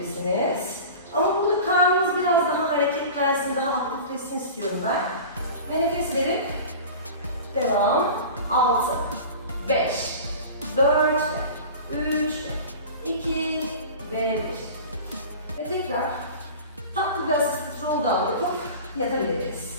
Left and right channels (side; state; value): both; inverted; correlation -0.36